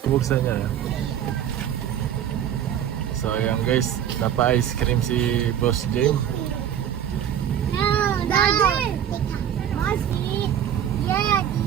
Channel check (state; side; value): quieter; left; 9.8 dB